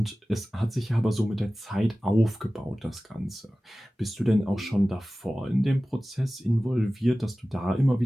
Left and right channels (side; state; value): both; normal; correlation 0.97